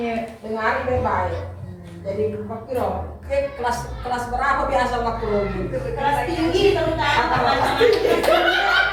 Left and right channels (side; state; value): both; identical; correlation 1.00